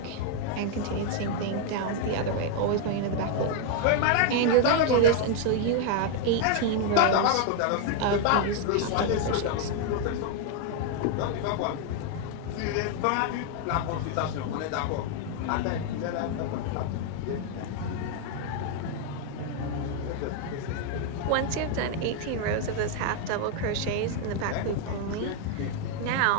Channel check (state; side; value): different; both; correlation 0.00